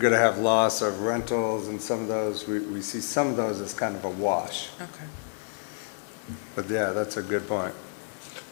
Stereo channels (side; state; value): right; silent; digital silence